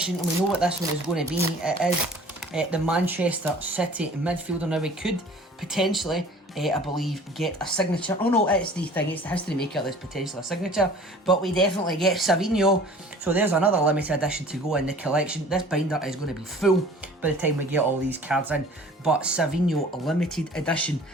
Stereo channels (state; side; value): normal; both; correlation 0.48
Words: and we know what this one is going to be. It is the Manchester City midfielder. Now we could potentially, I believe, get a signature. Oh no, it's the History Maker that's potentially a signature, but we definitely get Savinho. So there's another limited edition to go in the collection. This binder is going to be full by the time we get all these cards in, but Savinho limited edition